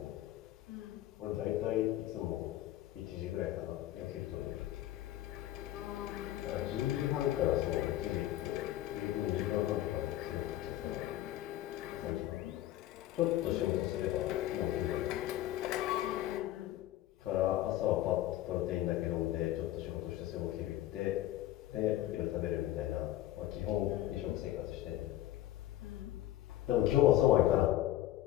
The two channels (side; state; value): right; quieter; 14.2 dB